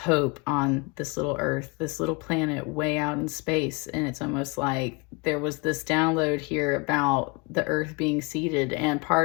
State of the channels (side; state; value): right; quieter; 28.8 dB